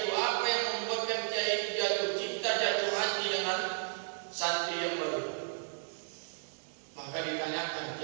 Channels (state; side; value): silent; left; digital silence